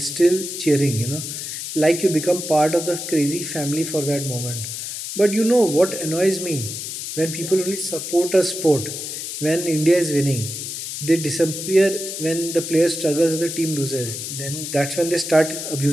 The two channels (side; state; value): left; noise; hiss, 6 dB below the sound